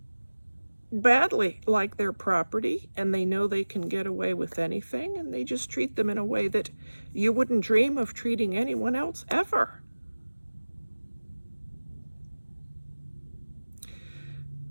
badly, like their property, and they know they can get away with anything, and they just treat them in a way that you wouldn't dream of treating anyone else ever.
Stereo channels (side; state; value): both; inverted; correlation -1.00